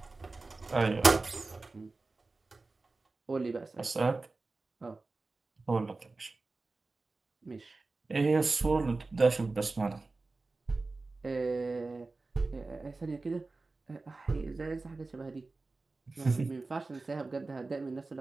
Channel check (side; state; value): left; quieter; 3.5 dB